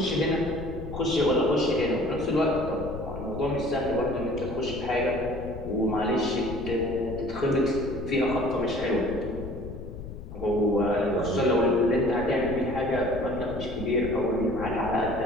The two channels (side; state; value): left; noise; rumble, 11 dB below the sound